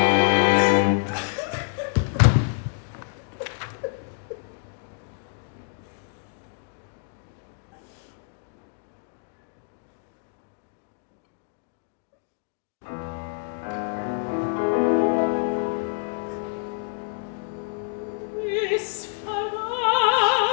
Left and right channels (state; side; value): silent; right; digital silence